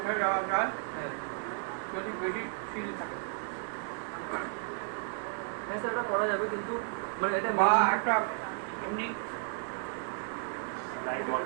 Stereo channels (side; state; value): left; silent; 56 dB below the other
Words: যাওয়া যায় হ্যাঁ যদি বেশি সিঁড়ি থাকে হ্যাঁ স্যার এটা করা যাবে কিন্তু মানে এটা বা একটা এমনি